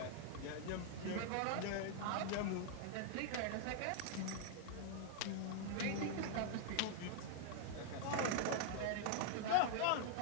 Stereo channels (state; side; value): different; both; correlation -0.01